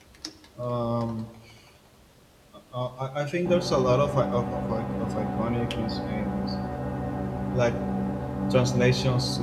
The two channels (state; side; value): identical; both; correlation 1.00